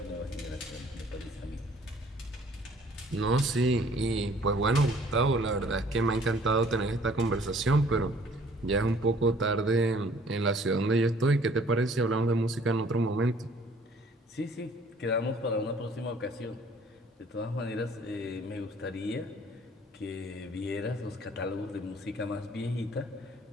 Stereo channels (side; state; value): both; normal; correlation 0.56